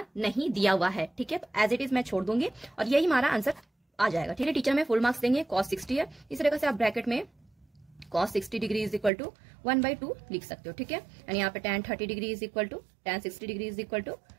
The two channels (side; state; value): left; drops out; at 9.1 s